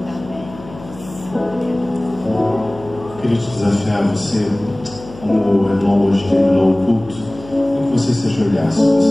Eu queria te desafiar você, como o irmão hoje terminou o culto, que você se ajoelhasse.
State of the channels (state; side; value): noise; left; hum, 18 dB below the sound